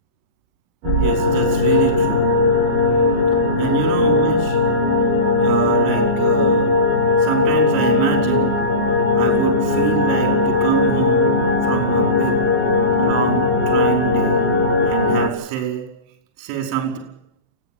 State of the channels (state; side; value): late; left; 23 ms